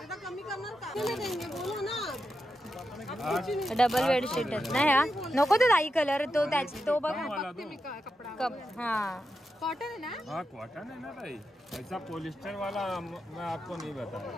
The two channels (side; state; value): both; normal; correlation 0.87